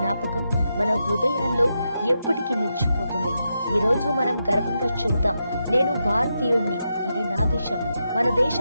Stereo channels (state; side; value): inverted; both; correlation -0.86